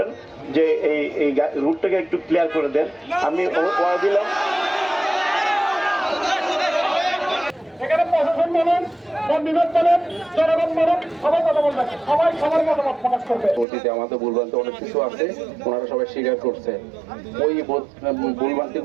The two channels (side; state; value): left; drops out; at 13.7 s